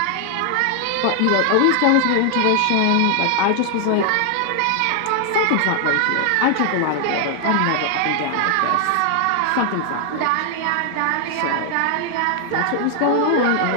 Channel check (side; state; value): both; different; correlation 0.00